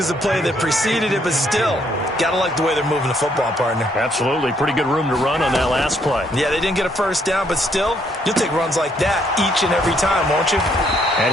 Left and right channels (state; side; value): normal; both; correlation 0.70